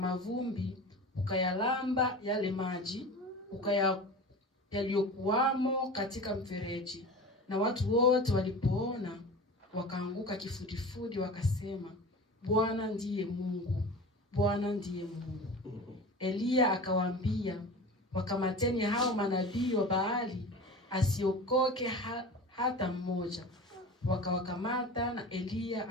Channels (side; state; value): both; normal; correlation 0.34